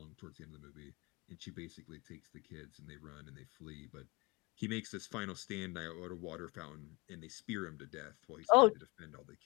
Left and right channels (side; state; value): right; quieter; 25.6 dB